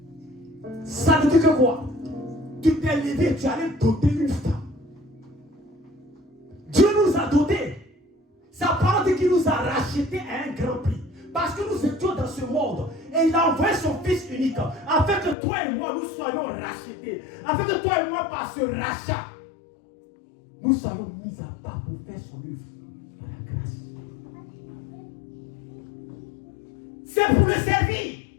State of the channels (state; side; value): drops out; right; at 15.4 s